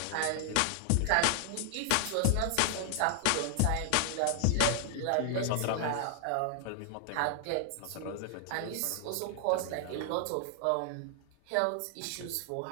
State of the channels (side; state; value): both; different; correlation 0.00